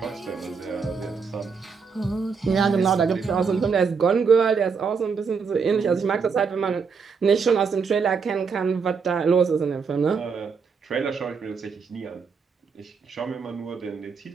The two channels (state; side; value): quieter; left; 5.6 dB